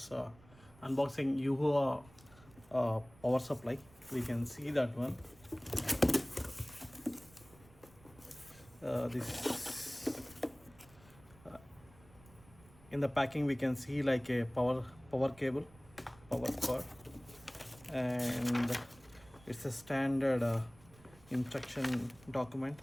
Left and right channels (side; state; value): right; noise; rumble, 24 dB below the sound